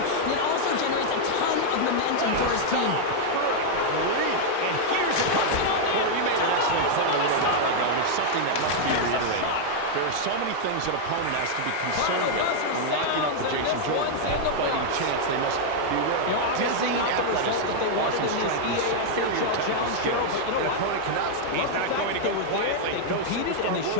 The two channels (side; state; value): both; different; correlation -0.01